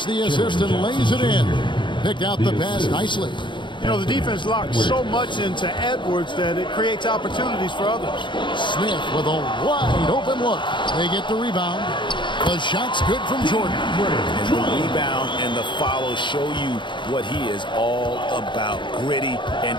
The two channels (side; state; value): right; late; 0.23 ms